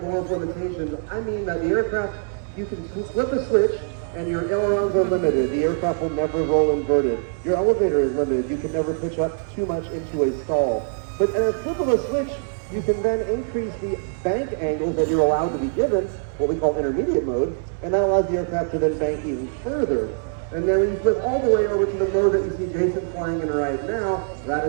limitations, I mean that the aircraft, you can flip a switch, and your ailerons are limited. The aircraft will never roll inverted. Your elevator is limited. You can never pitch up too much into a stall. But at a flip of a switch, you can then increase the bank angles that you're allowed to be given, what we call intermediate mode, and that allows the aircraft to then bank even further. And then when you flip all the way over to the mode that you see Jason flying in right now, that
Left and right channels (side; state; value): left; silent; 63 dB below the other